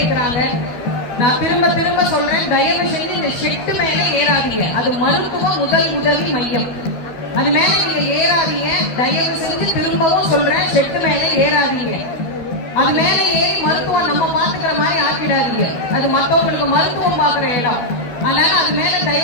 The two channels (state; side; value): late; right; 12 ms